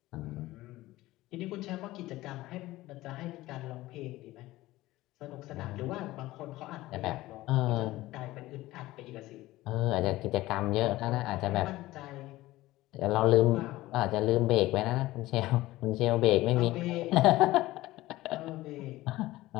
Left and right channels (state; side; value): quieter; right; 17.5 dB